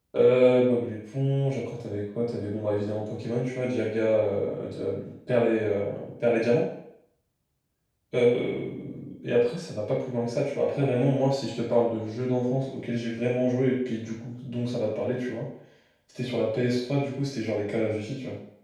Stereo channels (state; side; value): identical; both; correlation 1.00